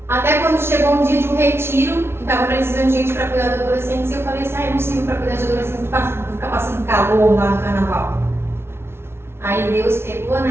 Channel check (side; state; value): left; late; 0.12 ms